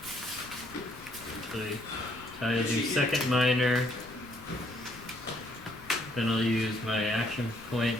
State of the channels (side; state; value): left; noise; rumble, 21 dB below the sound